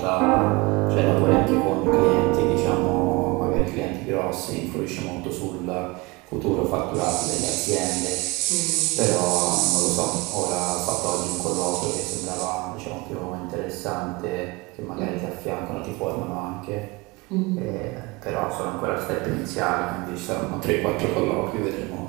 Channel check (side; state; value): left; quieter; 24.5 dB